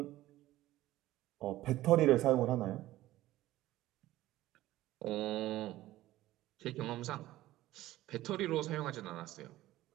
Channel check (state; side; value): quieter; left; 15.8 dB